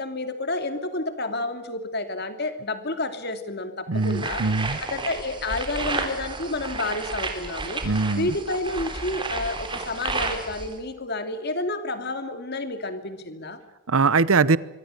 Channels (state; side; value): normal; both; correlation 0.02